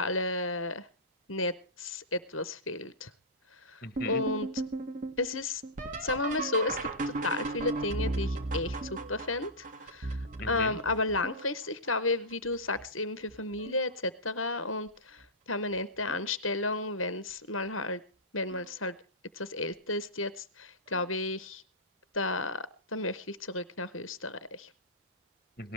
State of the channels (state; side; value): normal; both; correlation -0.17